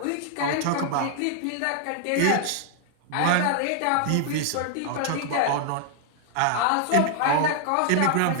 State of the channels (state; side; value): different; both; correlation 0.00